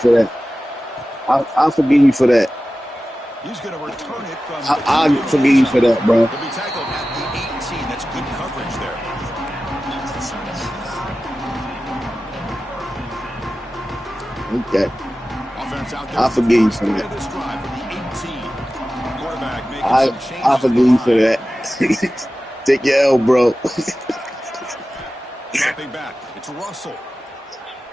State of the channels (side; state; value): both; normal; correlation 0.95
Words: that. I'll forgive you for that. He's going to return it from I'll forgive you for that, bro. He'll be tackled at the 18. That's good coverage there. Okay. I'll forgive you for that. I'll forgive you for that. Take your L, bro. Dropping back. It's Russell.